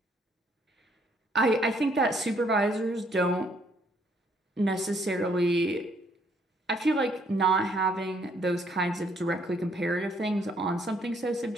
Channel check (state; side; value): normal; both; correlation 0.67